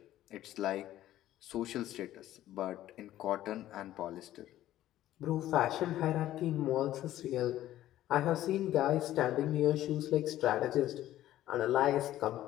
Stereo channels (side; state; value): right; quieter; 13.7 dB